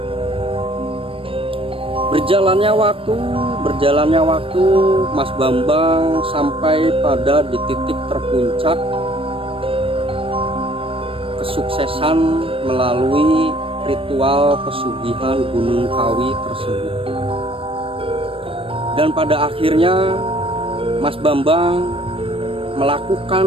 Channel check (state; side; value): late; left; 0.26 ms